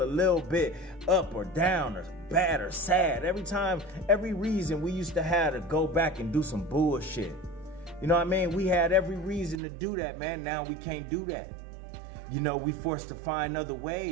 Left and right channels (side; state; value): left; drops out; at 9.6 s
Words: a little bit up or down or bad or sad, every reason we used to have to go back and do some bullshit. You know what I mean? We had every reason to do that, man. Now we can't do that. You know, we forced to find other